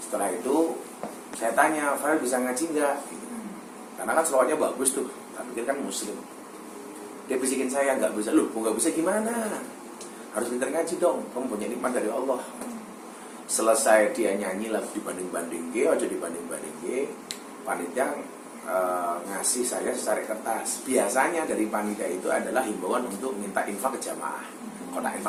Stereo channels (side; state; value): both; identical; correlation 1.00